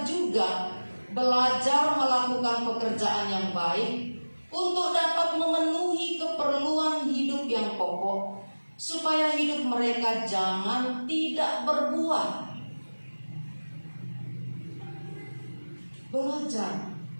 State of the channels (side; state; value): both; inverted; correlation -1.00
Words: juga belajar melakukan pekerjaan yang baik untuk dapat memenuhi keperluan hidup yang pokok, supaya hidup mereka jangan tidak berbuah. Belajar